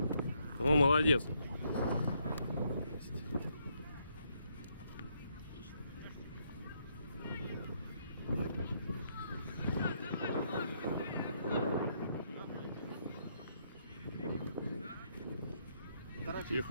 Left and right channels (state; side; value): inverted; both; correlation -0.74